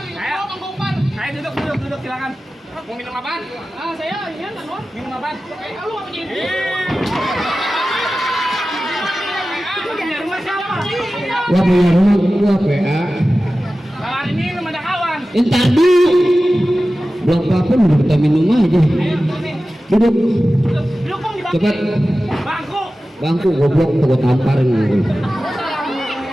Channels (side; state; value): both; normal; correlation 0.95